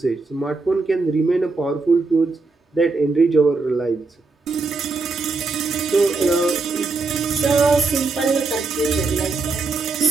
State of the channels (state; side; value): quieter; left; 3.9 dB